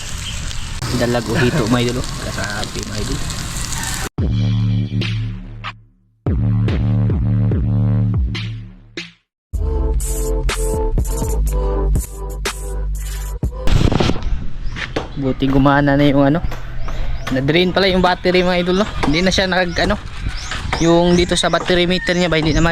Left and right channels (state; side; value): identical; both; correlation 1.00